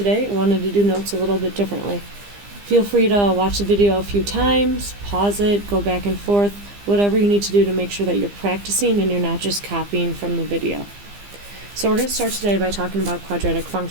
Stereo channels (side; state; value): left; late; 15 ms